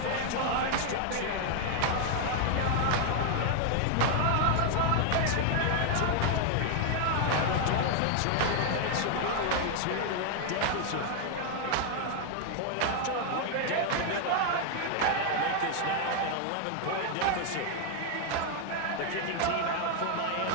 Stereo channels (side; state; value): both; different; correlation 0.00